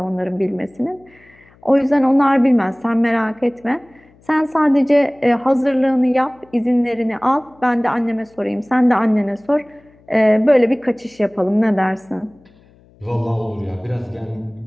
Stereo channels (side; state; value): left; noise; hum, 30 dB below the sound